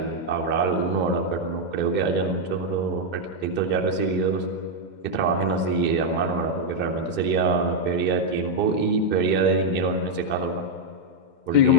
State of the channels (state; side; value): late; right; 2.1 ms